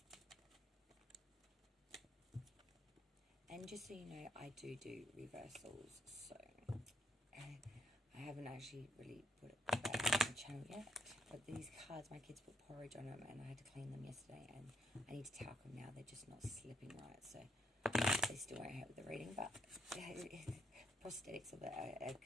And just so you know, I do reversals, so I haven't actually really put it back on the channel yet. But these cards, my kids put porridge on them and I had to clean them yesterday and I need to talc them now. They're just not slipping right, so they still won't help with the reading, but prosthetics of it are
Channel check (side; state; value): both; normal; correlation 0.73